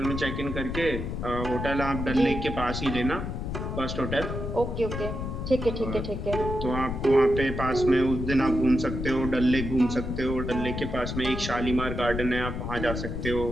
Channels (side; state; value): left; noise; rumble, 4 dB below the sound